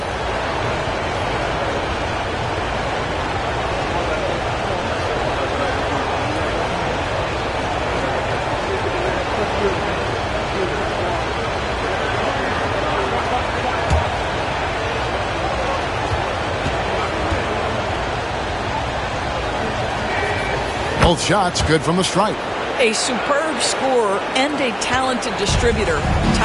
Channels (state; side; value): identical; both; correlation 1.00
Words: Both shots good from the stripe. A superb scorer and a talented distributor.